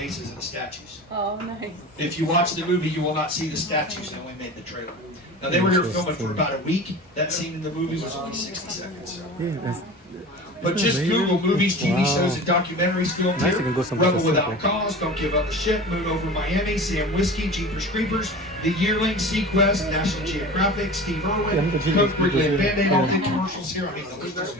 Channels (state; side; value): normal; both; correlation 0.35